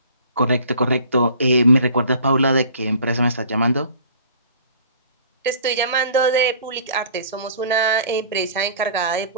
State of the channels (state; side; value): inverted; both; correlation -0.49